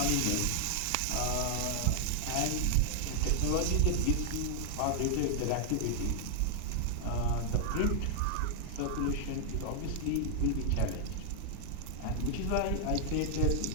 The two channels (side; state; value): both; different; correlation -0.01